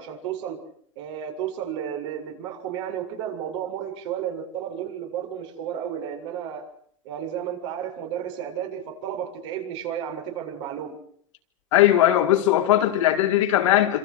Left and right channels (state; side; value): quieter; right; 6.2 dB